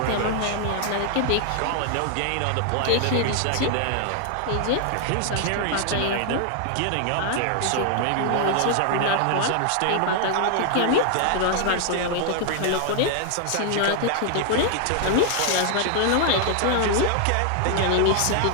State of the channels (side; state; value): both; different; correlation 0.00